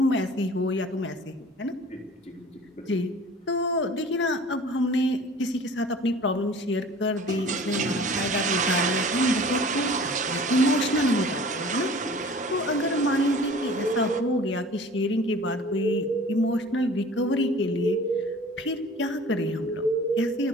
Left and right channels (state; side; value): normal; both; correlation 0.45